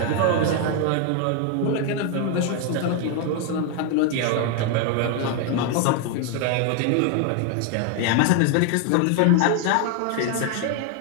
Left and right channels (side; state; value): both; different; correlation 0.01